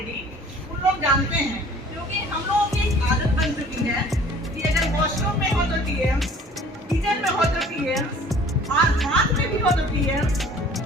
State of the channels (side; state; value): both; normal; correlation 0.51